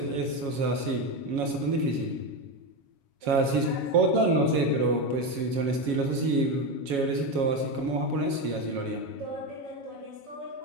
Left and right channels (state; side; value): late; left; 7.2 ms